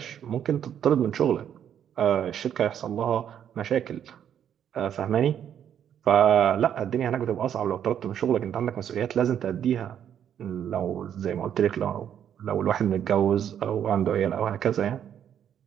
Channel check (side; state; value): left; quieter; 9.4 dB